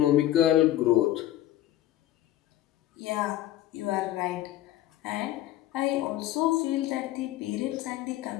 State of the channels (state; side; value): quieter; right; 13.7 dB